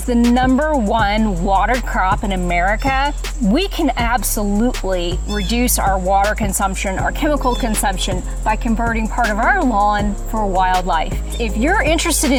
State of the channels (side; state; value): both; identical; correlation 1.00